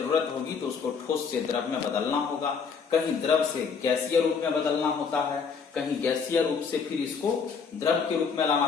होगी तो उसको ठोस से द्रव में बदलना होगा। कहीं द्रव से गैसीय रूप में बदलना होता है, कहीं गैसीय रूप से फिर इसको द्रव के रूप में लाना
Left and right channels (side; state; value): right; quieter; 5.8 dB